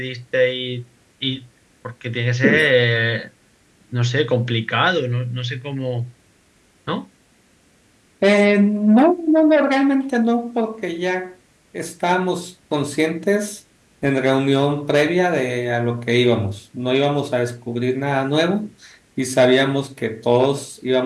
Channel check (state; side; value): identical; both; correlation 1.00